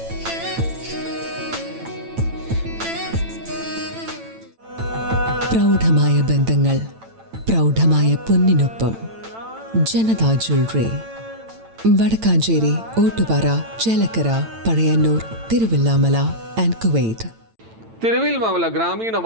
പ്രൗഢമായ ബന്ധങ്ങൾ, പ്രൗഢമായ പൊന്നിനൊപ്പം. Janatha jewellery, Vadakkanchery, Ottupara, Chelakkara, Pazhayannur, Thiruvillwamala and Kuwait. Thiruvillwamala ഗ്രാമീണ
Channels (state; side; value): late; left; 8.9 ms